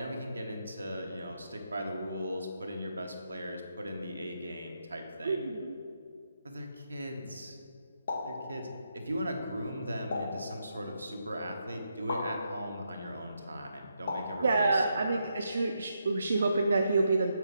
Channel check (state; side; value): inverted; both; correlation -0.81